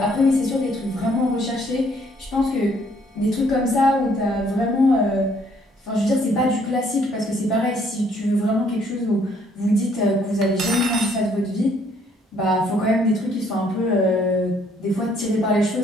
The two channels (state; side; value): normal; both; correlation 0.65